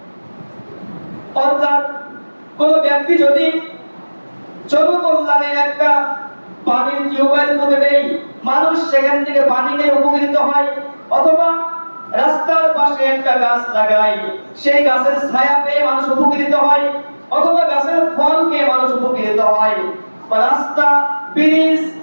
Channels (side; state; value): both; inverted; correlation -1.00